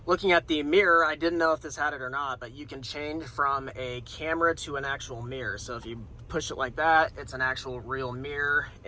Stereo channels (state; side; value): identical; both; correlation 1.00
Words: Looking at the mirror, I didn't know if this had it or not, but you can change from a camera to an actual mirror. So if you push it like that, it's an actual real mirror.